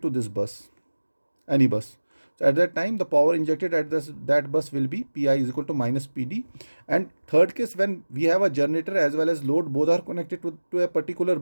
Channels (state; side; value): inverted; both; correlation -1.00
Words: to this bus, any bus, so at that time the power injected at that bus will be Pi is equal to minus Pd. And third case, when we have a generator as well as load, both are connected to a particular